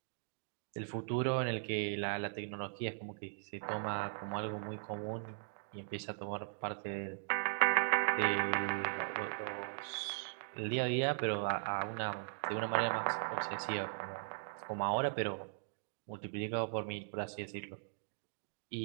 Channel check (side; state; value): left; silent; digital silence